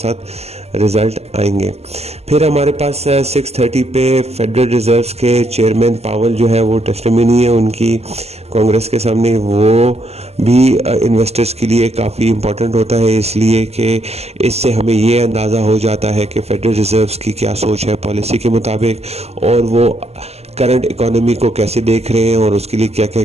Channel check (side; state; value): left; late; 0.30 ms